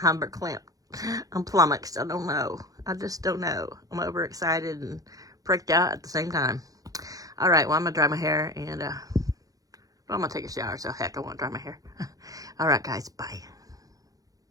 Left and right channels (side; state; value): left; late; 0.17 ms